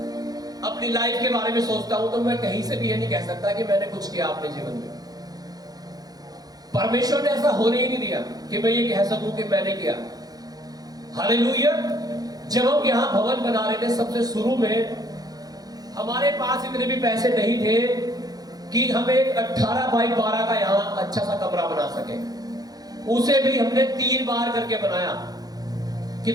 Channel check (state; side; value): late; left; 0.19 ms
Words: अपनी लाइफ के बारे में सोचता हूं, तो मैं कहीं से भी ये नहीं कह सकता कि मैंने कुछ किया अपने जीवन में। परमेश्वर ने ऐसा होने ही नहीं दिया कि मैं ये कह सकूं कि मैंने किया। हालेलुया। जब हम यहां भवन बना रहे थे, सबसे शुरू में हमारे पास इतने भी पैसे नहीं थे कि हम एक 18 बाई 12 का यहां अच्छा सा कमरा बना सके। उसे भी हमने 3 बार करके बनाया।